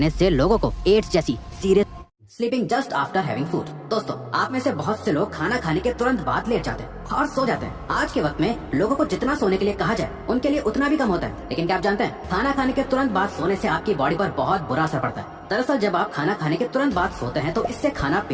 से लोगों को एड्स जैसी serious sleeping just after having food. दोस्तों, आप में से बहुत से लोग खाना खाने के तुरंत बाद लेट जाते हैं और सो जाते हैं। आज के वक्त में लोगों को जितना सोने के लिए कहा जाए उनके लिए उतना भी कम होता है, लेकिन क्या आप जानते हैं खाना खाने के तुरंत बाद सोने से आपकी बॉडी पर बहुत बुरा असर पड़ता है। दरअसल जब आप खाना खाने के तुरंत बाद सोते हैं तो इससे खाना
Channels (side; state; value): both; identical; correlation 1.00